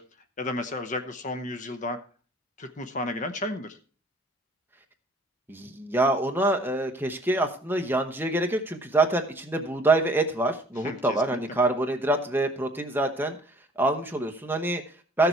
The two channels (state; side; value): normal; both; correlation 0.53